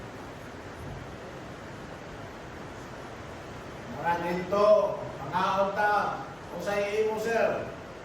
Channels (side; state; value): left; noise; hum, 28 dB below the sound